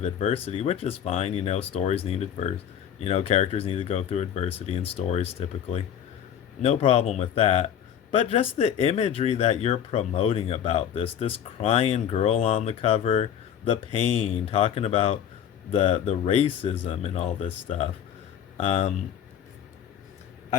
adversity, which is fine. Stories need adversity. Characters need to go through adversity in stories typically. No problem with that. But just the imagery that you're promoting about this crying girl on the cover, the pain, talking about the racism and all this stuff. I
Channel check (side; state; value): right; quieter; 9.3 dB